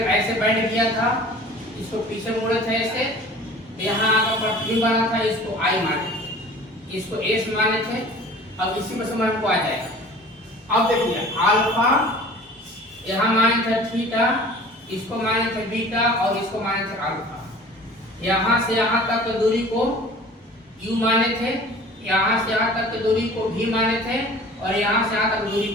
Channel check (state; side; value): normal; both; correlation 0.45